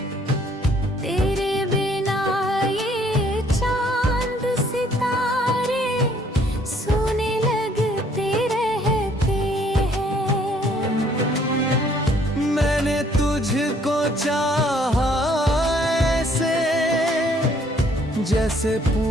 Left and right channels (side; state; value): both; normal; correlation 0.63